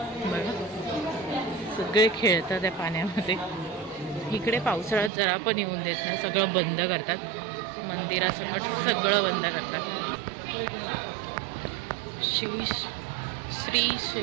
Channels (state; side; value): drops out; left; at 5.1 s